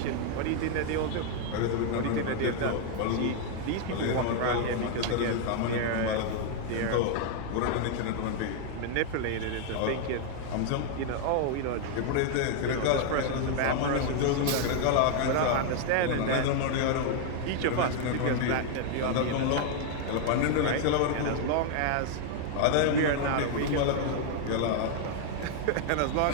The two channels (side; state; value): both; different; correlation 0.00